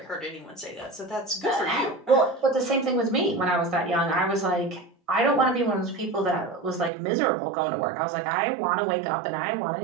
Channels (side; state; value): left; drops out; at 6.9 s